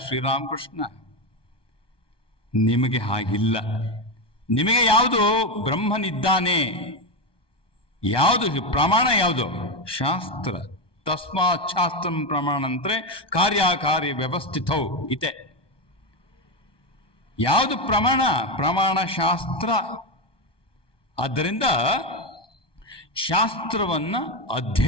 Sri Ramakrishna. ನಿಮಗೆ ಹಾಗಿಲ್ಲ. ನಿಮಗೆ ಯಾವುದು ಬ್ರಹ್ಮನಿದ್ದಾನೆ, ಯಾವುದು ಪ್ರಮಾಣ, ಯಾವುದು ಶಾಸ್ತ್ರ. ತಸ್ಮಾತ್ ಶಾಸ್ತ್ರಂ ಪ್ರಮಾಣ ಅಂದ್ರೆ ಕಾರ್ಯಕಾರ್ಯ ವ್ಯವಸ್ಥಿತೌ ಇದೆ. ಯಾವುದು ಪ್ರಮಾಣ? ಪ್ರಮಾಣ ಶಾಸ್ತ್ರ. ಆದ್ದರಿಂದ ಶಾಸ್ತ್ರವನ್ನ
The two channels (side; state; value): right; late; 1.2 ms